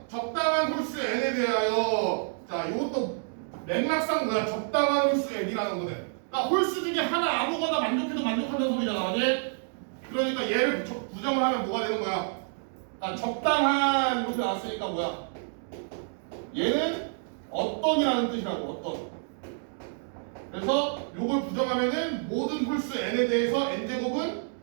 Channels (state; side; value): silent; left; digital silence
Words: 적당한 홀수 n에 대하여. 자, 이것도 맥락상 뭐야? 적당한 홀수 n이라는 거네. 그러니까 홀수 중에 하나 아무거나 만족해도 만족한다는 소리잖아, 맞지? 그러니까 얘를 부정을 하면 뭐가 되는 거야? 그러니까 적당한 이렇게 나왔으니까 뭐야? 얘는 어떤이라는 뜻이라고, 어떤. 그래서 요걸 부정하면은 모든 홀수 n에 대해서 n제곱은